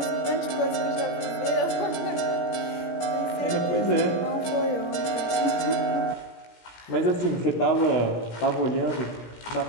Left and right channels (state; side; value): late; right; 17 ms